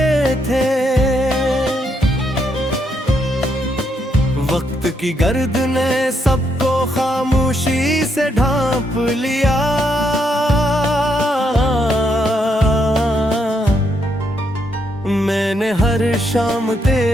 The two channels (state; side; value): normal; both; correlation 0.77